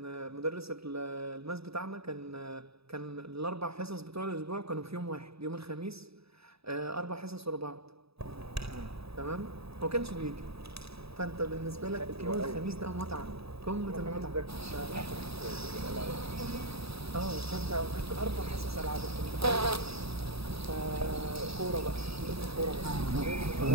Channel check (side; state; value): left; late; 0.77 ms